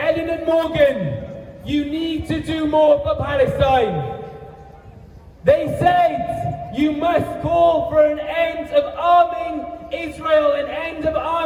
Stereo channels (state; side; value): identical; both; correlation 1.00